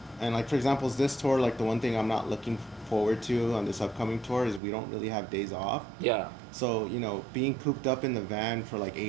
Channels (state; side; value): drops out; left; at 4.6 s